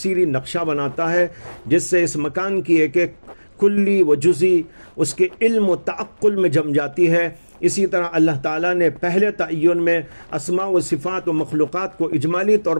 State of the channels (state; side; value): inverted; both; correlation -1.00